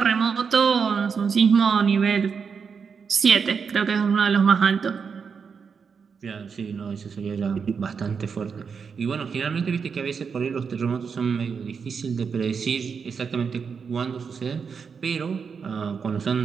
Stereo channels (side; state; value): left; quieter; 6.0 dB